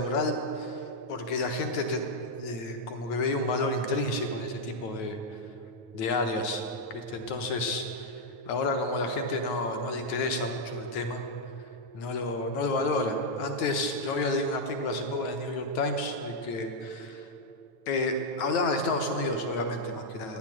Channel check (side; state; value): right; late; 9.2 ms